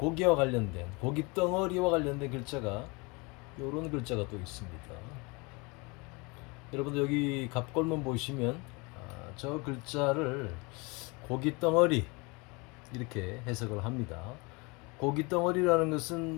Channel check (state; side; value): quieter; right; 27.8 dB